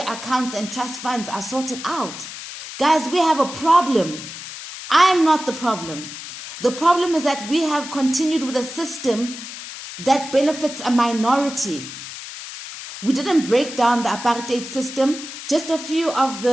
accounts and trust funds are sorted out. Guys, we have a problem. I'm not the problem. The problem is that we have continued with a system that benefits a minority. We didn't break down the apartheid system. Just a few of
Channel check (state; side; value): noise; left; hiss, 11 dB below the sound